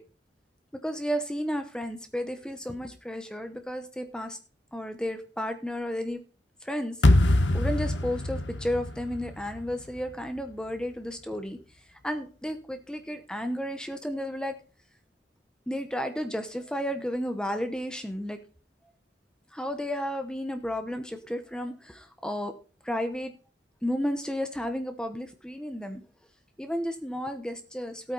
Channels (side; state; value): both; normal; correlation 0.88